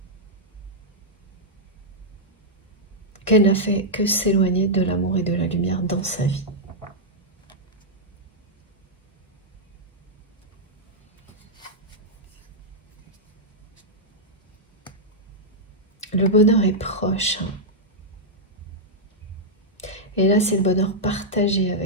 qu'elle n'a fait que s'éloigner de l'amour et de la lumière dans sa vie. Le bonheur est proche. Et là, c'est le bonheur partagé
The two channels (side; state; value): both; normal; correlation -0.06